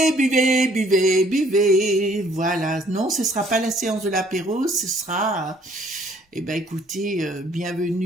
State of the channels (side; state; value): both; normal; correlation 0.61